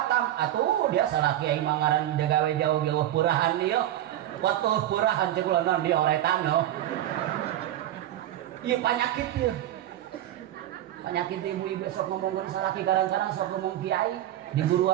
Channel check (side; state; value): left; quieter; 12.8 dB